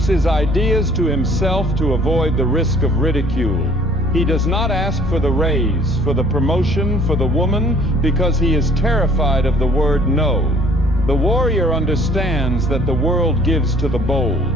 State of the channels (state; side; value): normal; both; correlation 0.56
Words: his ideas to himself to avoid the risk of ridicule. He does not ask for the raise, for the promotion, for the woman, because he is terrified of the word no. The warrior understands that the world gives to the